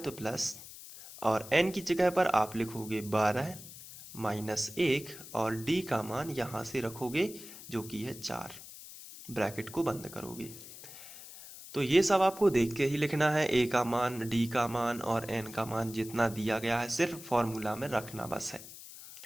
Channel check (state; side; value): noise; left; hiss, 15 dB below the sound